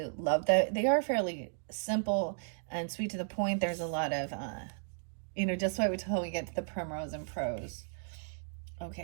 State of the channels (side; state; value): left; silent; digital silence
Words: love that. They are fairly simple and sweet to the point. There's a lot of, just wait until we get to the primrose and prose.